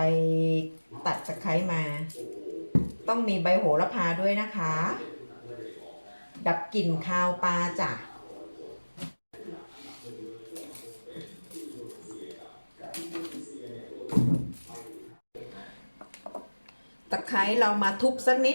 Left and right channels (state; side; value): inverted; both; correlation -1.00